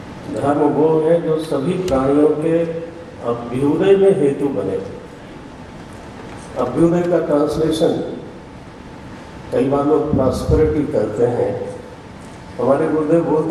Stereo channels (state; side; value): identical; both; correlation 1.00